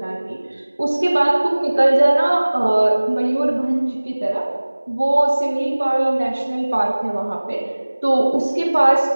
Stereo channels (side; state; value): both; inverted; correlation -1.00